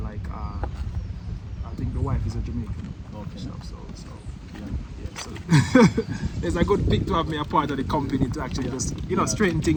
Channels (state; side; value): identical; both; correlation 1.00